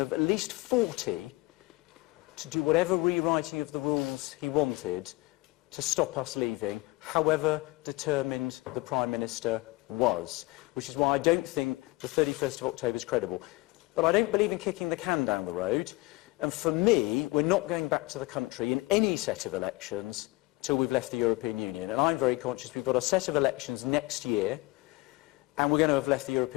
at least 40 to do whatever rewriting of the rules he wanted to stop us leaving, however determined the Prime Minister was, which is why I don't think the 31st of October is credible. But I don't believe in kicking the can down the road. And for me, we're not going back to the country in any set of elections till we've left the European Union. And I'm very conscious we've got a set of elections next year, and we're going to have left the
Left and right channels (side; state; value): right; quieter; 22.8 dB